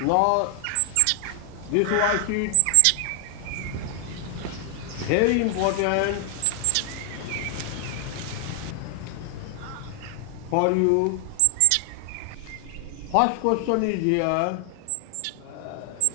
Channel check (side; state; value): both; different; correlation 0.00